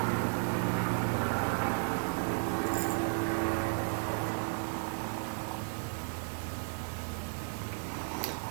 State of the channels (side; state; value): left; silent; 55 dB below the other